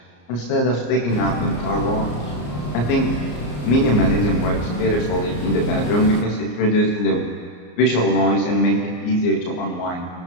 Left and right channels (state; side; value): late; right; 34 ms